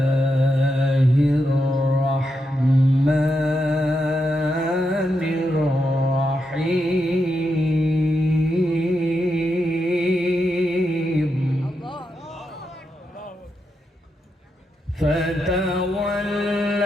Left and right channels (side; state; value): both; normal; correlation 0.84